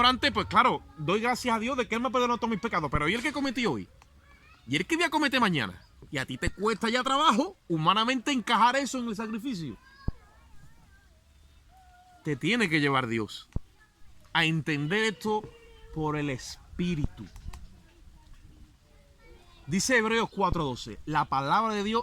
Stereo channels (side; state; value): both; identical; correlation 1.00